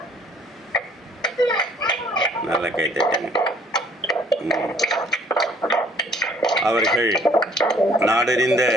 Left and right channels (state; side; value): normal; both; correlation 0.59